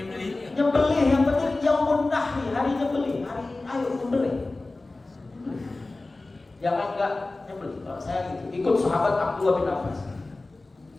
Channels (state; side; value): quieter; right; 3.1 dB